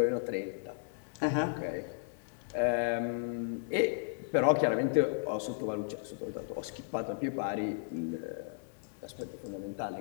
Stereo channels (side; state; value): right; silent; 55 dB below the other